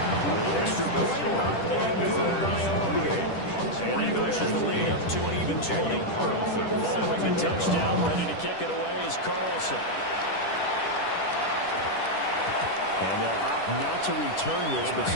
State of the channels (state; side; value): late; right; 10 ms